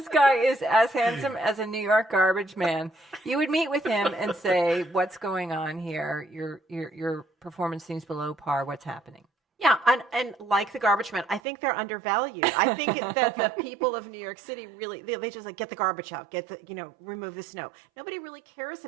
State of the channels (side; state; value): left; drops out; at 11.4 s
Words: guy is as handsome as a New York garbage man, you would meet with him and say, "What's going on here? Your performance seems below par. What's happening?" Yeah, and like the garbage men, I think they're undervalued. I think that the people of New York City really, they just get the garbage out, remove the snow. Nobody really cares